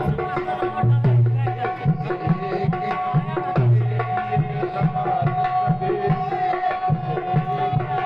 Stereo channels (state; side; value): identical; both; correlation 1.00